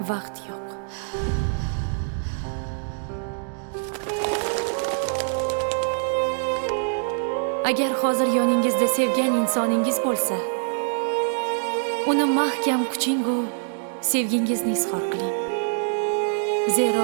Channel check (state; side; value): silent; left; digital silence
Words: vaqt yo'q. Agar hozir yoningizda sevgan insoningiz bo'lsa, uni mahkam quching-u sevgingizni izhor qiling.